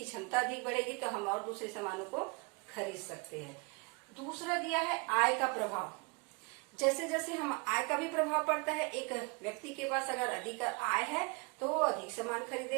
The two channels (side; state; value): left; quieter; 31.8 dB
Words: क्षमता अधिक बढ़ेगी तो हम और दूसरे सामानों को खरीद सकते हैं। दूसरा दिया है आय का प्रभाव। जैसे जैसे हम आय का भी प्रभाव पड़ता है। एक व्यक्ति के पास अगर अधिक आय है तो वो अधिक सामान